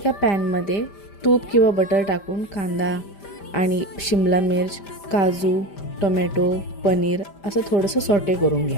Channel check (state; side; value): late; right; 5.0 ms